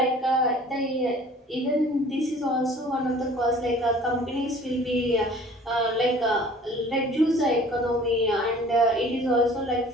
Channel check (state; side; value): normal; both; correlation 0.49